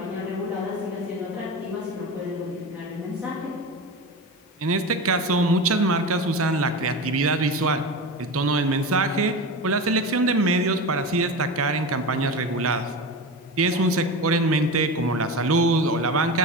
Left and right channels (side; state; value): both; normal; correlation 0.26